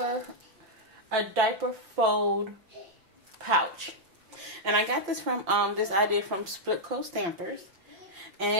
fold pouch. And I got this from this idea from Split Coat Stampers.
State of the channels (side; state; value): left; late; 5.7 ms